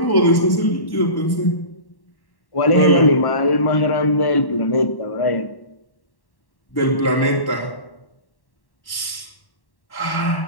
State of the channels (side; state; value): right; late; 1.1 ms